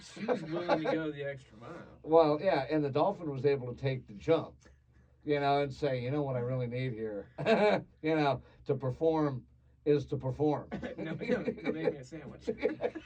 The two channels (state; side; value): identical; both; correlation 1.00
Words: She was willing to go the extra mile. Well, yeah, and the dolphin was able to take the jump, and say, what I really need here, to perform is to perform. No, make me a sandwich.